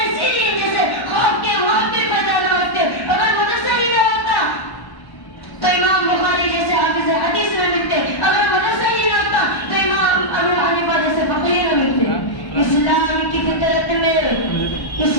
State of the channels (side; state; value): right; late; 1.1 ms